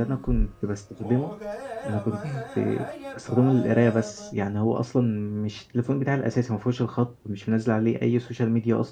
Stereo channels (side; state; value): both; identical; correlation 1.00